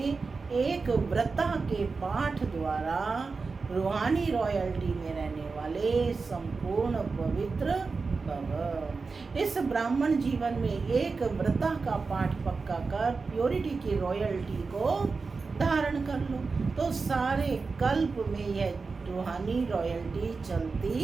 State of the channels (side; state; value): left; quieter; 4.4 dB